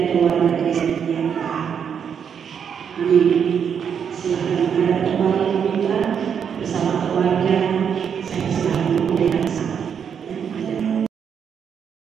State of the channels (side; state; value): left; quieter; 7.5 dB